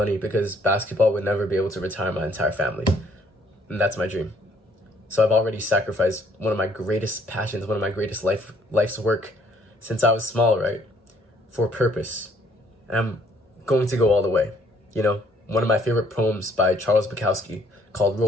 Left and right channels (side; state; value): both; normal; correlation 0.64